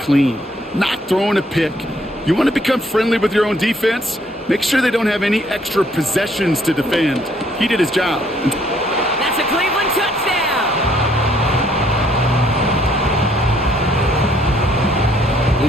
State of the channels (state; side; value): normal; both; correlation 0.66